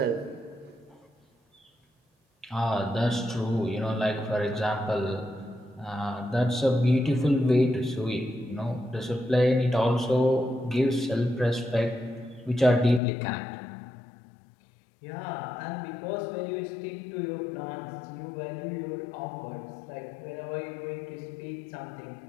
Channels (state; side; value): drops out; right; at 13.0 s